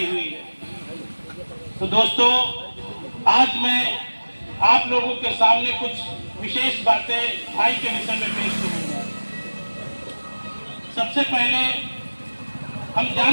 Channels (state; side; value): inverted; both; correlation -1.00